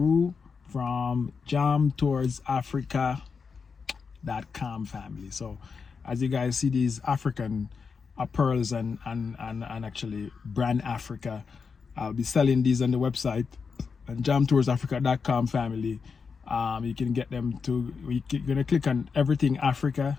from jamtowardsafrica.com family. So as you guys see these African pearls and actually brand Africa, I'll be selling these on the website and jamtowardsafrica.com family. You can get them to, you're gonna click on everything Africa,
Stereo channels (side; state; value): right; quieter; 5.4 dB